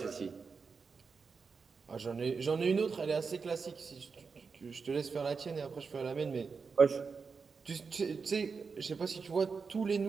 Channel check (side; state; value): left; quieter; 5.1 dB